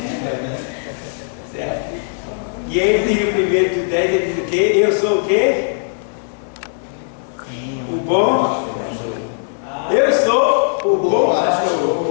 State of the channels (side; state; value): right; silent; digital silence